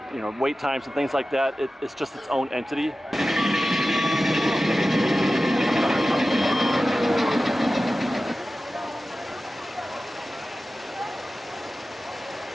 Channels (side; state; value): both; normal; correlation 0.95